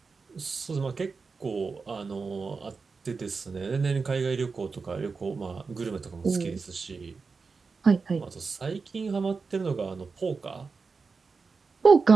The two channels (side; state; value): left; quieter; 4.7 dB